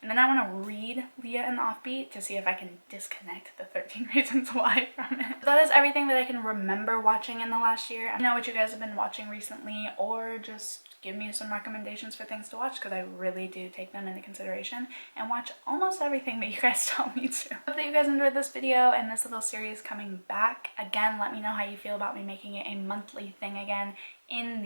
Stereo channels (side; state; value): both; inverted; correlation -1.00